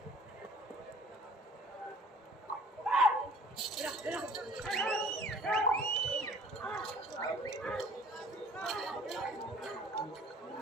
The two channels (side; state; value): both; normal; correlation 0.52